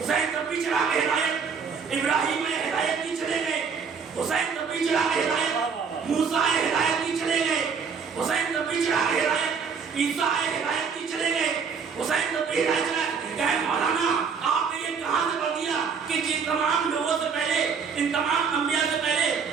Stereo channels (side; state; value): left; quieter; 6.0 dB